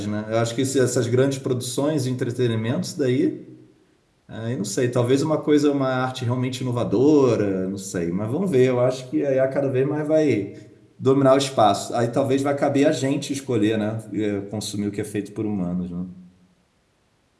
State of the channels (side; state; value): both; identical; correlation 1.00